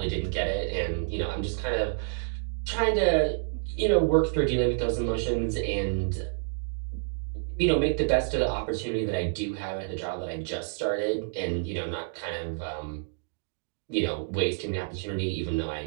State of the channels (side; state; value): left; silent; digital silence